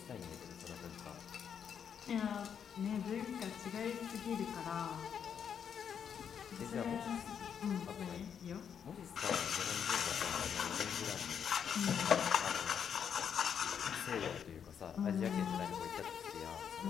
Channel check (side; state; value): right; quieter; 7.8 dB